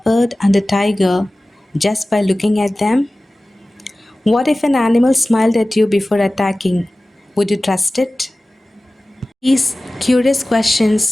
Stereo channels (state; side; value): normal; both; correlation 0.97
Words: and a tiger just by looking at them? What if an animal smiled at you before attacking? Would you trust it? These curious